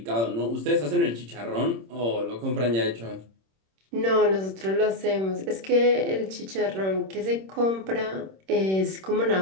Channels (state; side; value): late; left; 26 ms